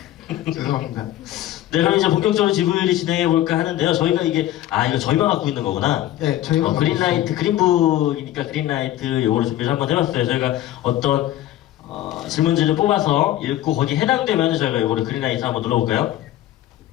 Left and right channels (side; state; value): right; quieter; 13.7 dB